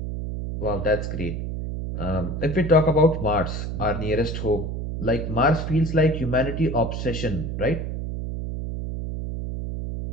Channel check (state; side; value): noise; right; hum, 4 dB below the sound